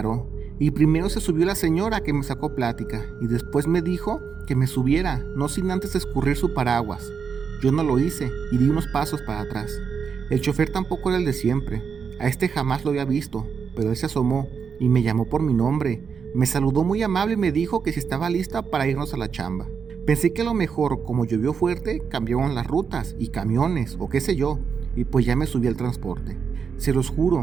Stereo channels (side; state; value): left; quieter; 6.3 dB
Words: y primero se subió la señora que me sacó plática y después me dijo que me subiera, no sin antes escurrir su paraguas. Yo no lo hice y di unos pasos para atrás. El chofer tampoco era el de siempre. A este jamás lo había visto, pero él se asomó y me llamó por mi nombre. Me saludó muy amable y me dijo que si estaba lista para irnos a la chamba. Pensé que a lo mejor, como llovió fuerte, cambiaron las rutas y camiones o qué sé yo, y pues ya me subí al transporte. Se los